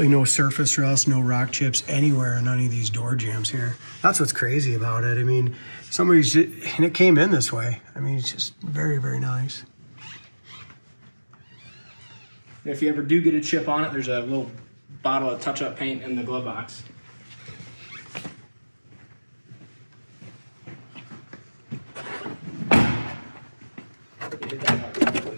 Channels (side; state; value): both; inverted; correlation -1.00